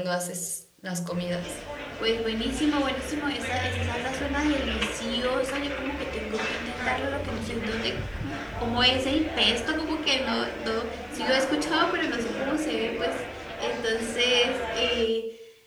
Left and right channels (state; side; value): identical; both; correlation 1.00